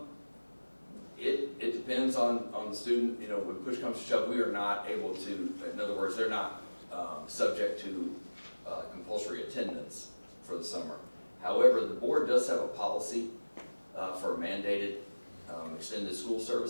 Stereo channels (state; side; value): inverted; both; correlation -1.00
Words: It depends on the student. When push comes to shove, we are not able to, in other words, they're not subject to compulsory attendance for the summer. However, the board does have a policy for mandated extended school